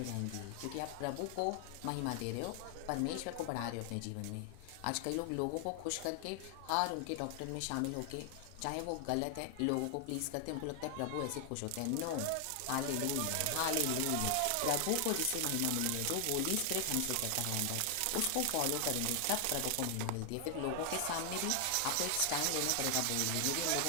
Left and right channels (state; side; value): different; both; correlation 0.00